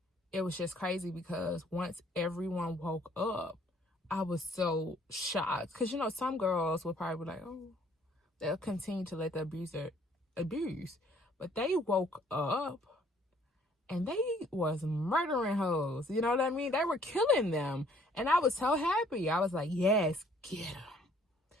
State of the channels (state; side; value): normal; both; correlation 0.61